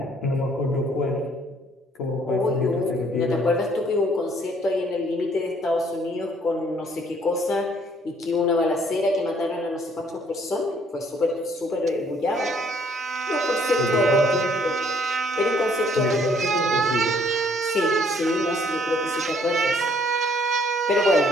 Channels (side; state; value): both; normal; correlation 0.63